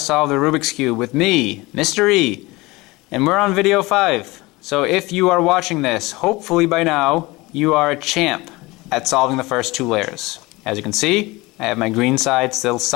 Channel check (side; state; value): right; quieter; 22.1 dB